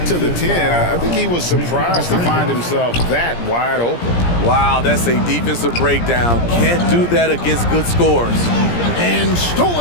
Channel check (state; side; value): late; right; 17 ms